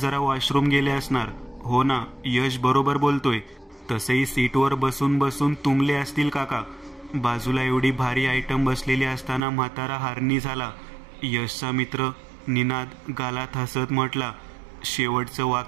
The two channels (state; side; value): drops out; left; at 9.4 s